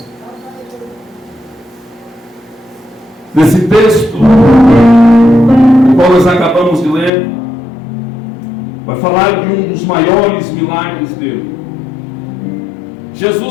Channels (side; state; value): right; drops out; at 7.1 s